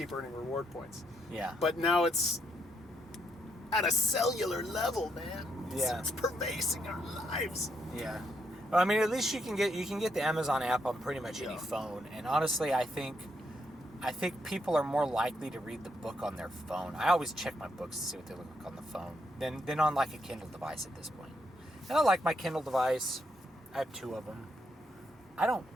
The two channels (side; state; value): both; normal; correlation 0.77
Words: earning reward points. Yeah. But now it's at a cellular level, man. Yeah. It's pervading our lives. Yeah. Well, I mean, at least you can get the Amazon app on pretty much any phone, and honestly, I think people are more likely to read the book on their phone. I always check my books to see what they look like on the phone than on like a Kindle device at this point. And I like my Kindle device. I have 2 of them. I don't